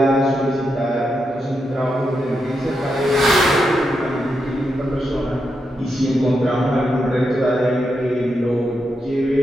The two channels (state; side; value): normal; both; correlation 0.85